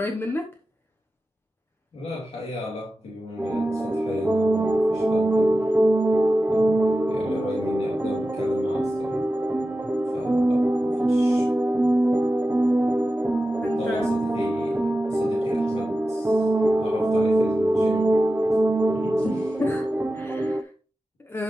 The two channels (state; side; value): normal; both; correlation 0.93